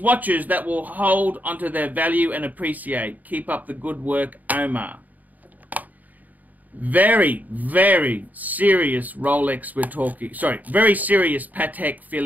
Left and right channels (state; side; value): late; left; 0.080 ms